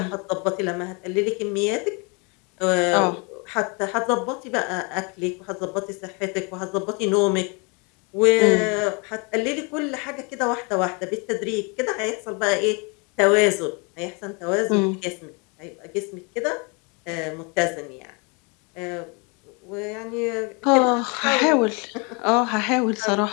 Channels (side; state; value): right; quieter; 31.7 dB